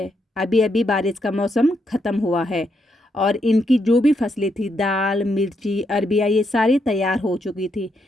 अभी अभी बारिश का मौसम ख़त्म हुआ है और इनकी जो भी फसलें थी, दाल, मिर्ची, अरबिया, ये सारी तैयार हो चुकी थी,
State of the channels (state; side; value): normal; both; correlation 0.79